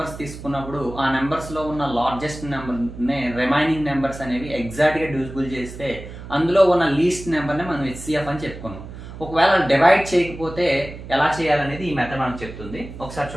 తీసుకున్నప్పుడు ఆ నెంబర్స్లో ఉన్న లార్జెస్ట్ నెంబర్ని రిమైనింగ్ నెంబర్స్ అనేవి ఎగ్జాక్ట్గా డివిజిబుల్ చేస్తే అందులో ఉన్న లీస్ట్ నెంబర్ని మనం హెచ్సిఎఫ్ అని చెప్పుకున్నాం. ఒకవేళ డివైడ్ చేయకపోతే ఎలా చేయాలనేది ఈ మెథడ్ మనకు చెప్తుంది. ఒకసారి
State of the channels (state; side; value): noise; right; hum, 13 dB below the sound